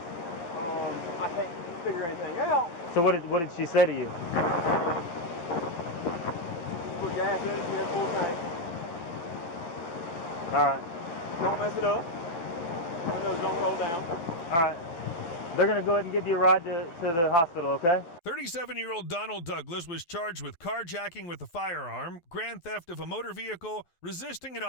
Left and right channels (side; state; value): right; late; 11 ms